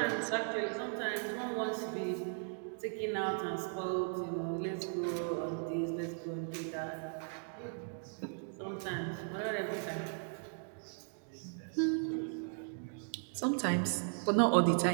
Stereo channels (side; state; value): left; silent; 53 dB below the other